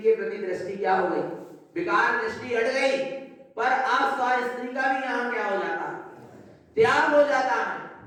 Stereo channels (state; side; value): identical; both; correlation 1.00